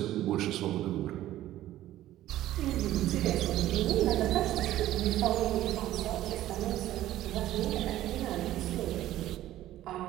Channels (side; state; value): left; quieter; 14.0 dB